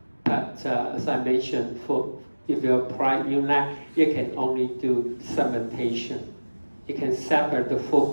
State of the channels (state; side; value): inverted; both; correlation -1.00